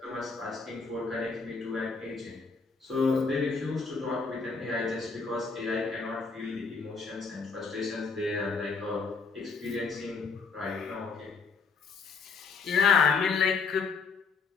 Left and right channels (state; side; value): quieter; right; 4.8 dB